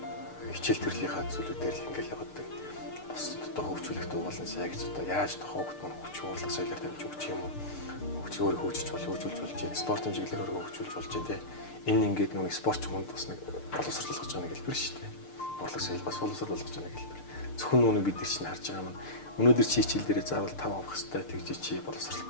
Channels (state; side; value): late; right; 6.7 ms